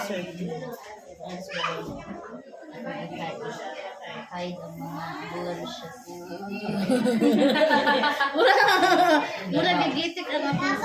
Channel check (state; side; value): identical; both; correlation 1.00